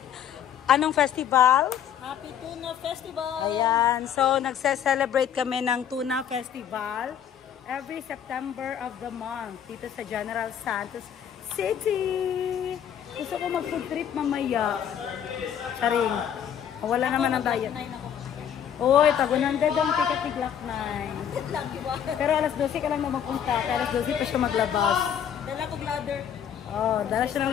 anong festival? Happy Tuna Festival! Ayan, so nagse-celebrate kami ng Tuna Festival every September of the month dito sa General Santos City. Gusto ko mag-food trip mamaya. Charing. Wala naman ang diet. Uy, tagunan ganda ang ticket ni Glock 9. Pero alas 12 ka lang na magpunta. Kaya alas 12 pa siya maglabas. Dala kong ladder. Oh, dala siya ng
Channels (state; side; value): quieter; right; 9.1 dB